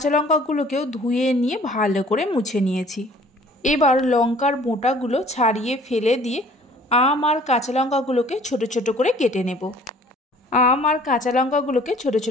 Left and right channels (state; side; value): normal; both; correlation 0.53